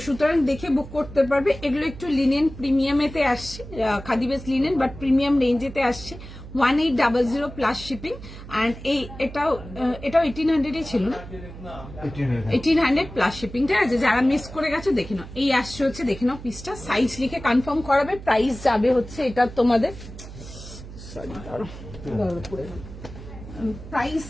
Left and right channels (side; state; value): right; noise; hum, 14 dB below the sound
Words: সুতরাং দেখে বুক করতে পারবে। এগুলো একটু লিনেন প্রিমিয়ামেতে আসছে, khadi base linen but premium রেঞ্জেতে আসছে। 1800 প্লাস শিপিং। অ্যান্ড এটাও 1800 ছিল না, 1800 প্লাস শিপিং, ঠিক আছে? যারা মিস করে গেছো দেখে নাও। এই আসছে হচ্ছে, দেখে নাও পিসটা, সাইজ লিখে কনফার্ম করাবে। প্রাইস যাবে হচ্ছে এটা তোমাদের, প্রাইস